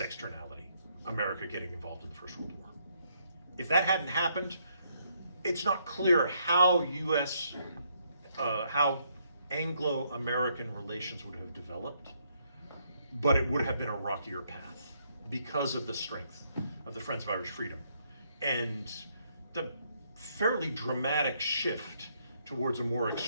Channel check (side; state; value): both; inverted; correlation -0.73